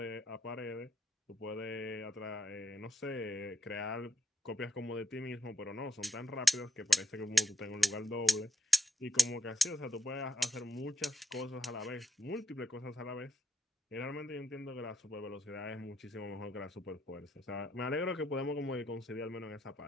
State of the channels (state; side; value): normal; both; correlation 0.80